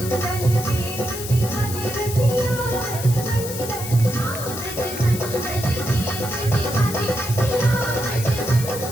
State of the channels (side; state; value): left; noise; hiss, 9 dB below the sound